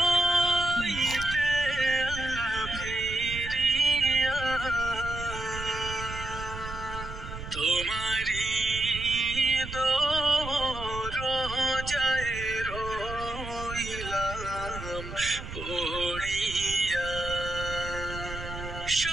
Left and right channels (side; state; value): right; noise; rumble, 9 dB below the sound